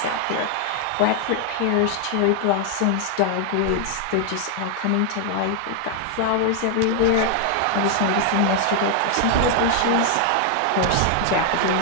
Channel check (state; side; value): different; both; correlation 0.00